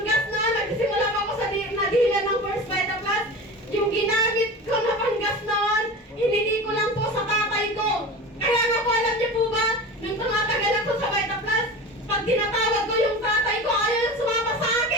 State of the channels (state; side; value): normal; both; correlation 0.32